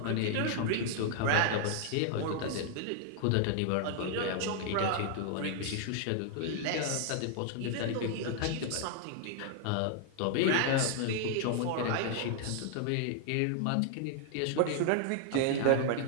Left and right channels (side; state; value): both; different; correlation 0.00